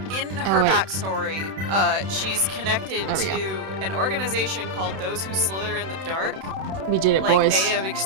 in her backstory, she's connected to an organization called Those Who Slither in the Dark. We did it, like, boys. They have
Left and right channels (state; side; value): late; left; 31 ms